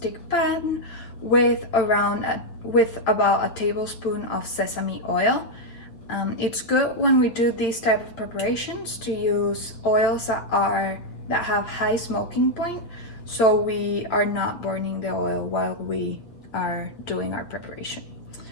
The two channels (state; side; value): late; right; 8.7 ms